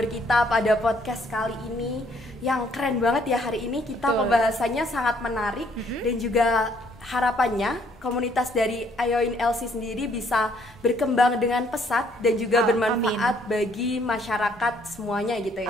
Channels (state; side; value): normal; both; correlation 0.66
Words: kita pada podcast kali ini yang keren banget ya. Hari ini kita pembahasannya sangat menarik dan juga harapannya komunitas dari Ayoin LC sendiri bisa berkembang dengan pesat dan juga bermanfaat bagi masyarakat semuanya gitu